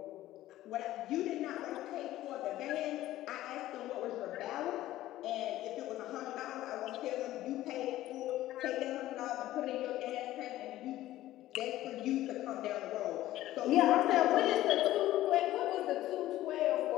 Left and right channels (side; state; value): right; quieter; 14.8 dB